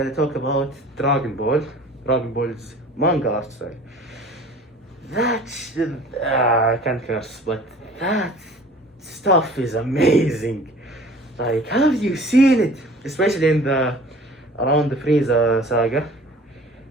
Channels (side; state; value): both; normal; correlation 0.46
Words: talk about Dragon Ball. Dragon Ball's manga art style. I can't curse, but that stuff is amazing. Like, have you seen it? Especially in the around the Frieza saga,